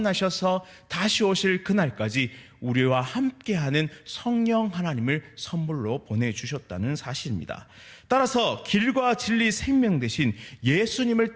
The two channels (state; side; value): identical; both; correlation 1.00